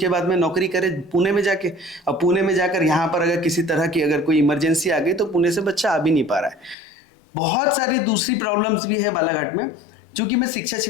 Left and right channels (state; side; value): drops out; right; at 6.8 s